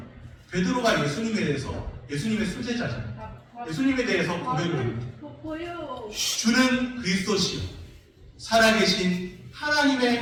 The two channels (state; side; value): identical; both; correlation 1.00